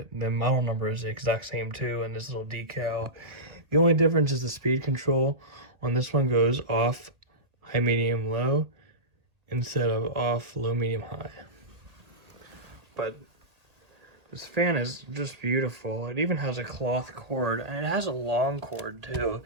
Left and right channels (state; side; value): late; left; 2.0 ms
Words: model number is the exact same too, and this little decal. The only difference is the speed control. On this one goes off, high, medium, low, instead of off, low, medium, high. But this fan is just beautiful. It even has a cloth cord, and it has a long cord too.